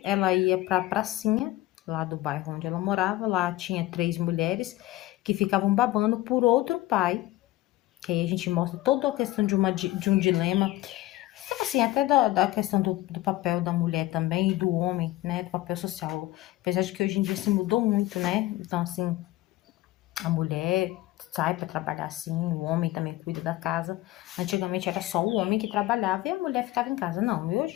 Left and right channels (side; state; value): right; quieter; 16.8 dB